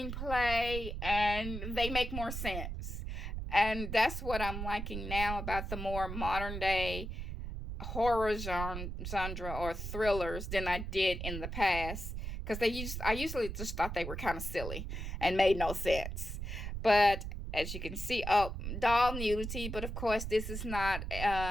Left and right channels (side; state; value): right; noise; rumble, 5 dB below the sound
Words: and they make more sense. And that's what I'm liking now about the more modern day horror genre or thrillers than I did in the past, because I usually just thought they were kind of silly and made no sense. But as you can see, oh, doll nudity, but of course this is not,